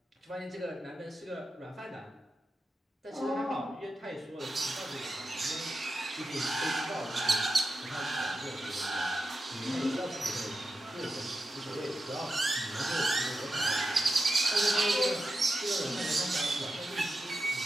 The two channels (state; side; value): normal; both; correlation 0.90